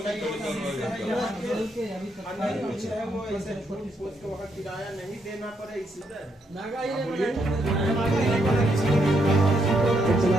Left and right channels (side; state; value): both; normal; correlation 0.77